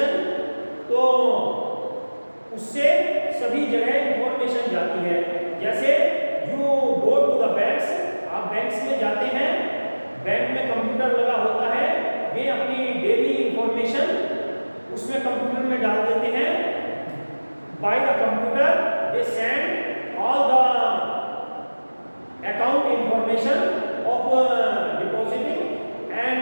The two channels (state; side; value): inverted; both; correlation -1.00